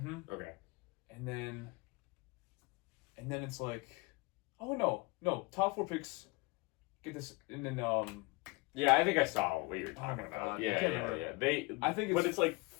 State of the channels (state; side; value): quieter; right; 25.7 dB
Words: Okay. And then it's like, oh no, top 4 picks get this, and then Yeah, I think I saw what you were Oh talking my about. God. I Yeah. can't remember. I think it's like